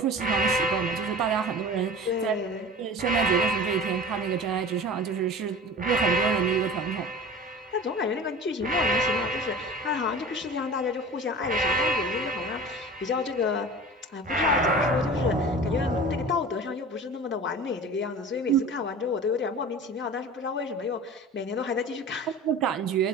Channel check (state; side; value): normal; both; correlation 0.38